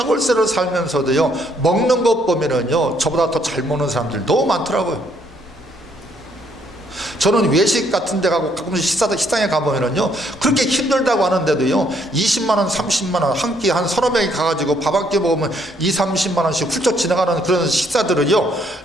살면서도요, 먹는 것 보면은요, 저보다 더 잘 먹는 사람들 너무 많더라고요. 저는 외식 같은 데 가고 가끔씩 식당에 가보면은요, 그렇게 힘들다고 하는데도요, 20만원, 30만원, 한 끼 한 서너 명이 가가지고 밥 한 끼 먹으면 20-30만원씩 훌쩍 지나가는 그런 식사들은요,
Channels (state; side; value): normal; both; correlation 0.69